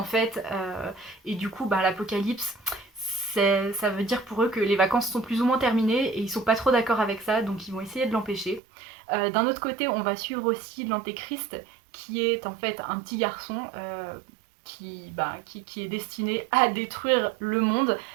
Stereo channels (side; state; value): left; drops out; at 8.6 s